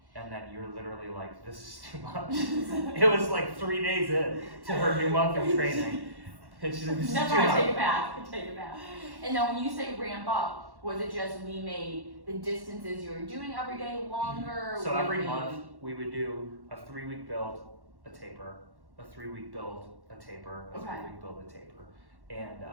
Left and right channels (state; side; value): late; left; 1.1 ms